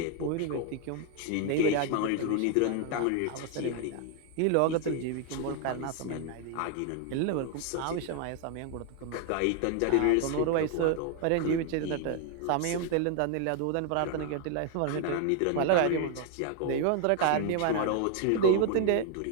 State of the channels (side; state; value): both; different; correlation 0.00